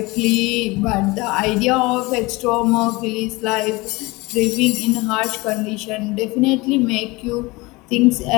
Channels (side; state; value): right; quieter; 23.1 dB